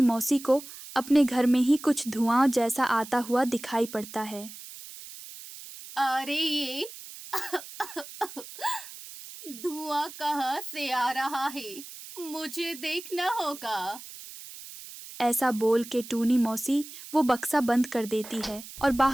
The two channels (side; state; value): right; noise; hiss, 14 dB below the sound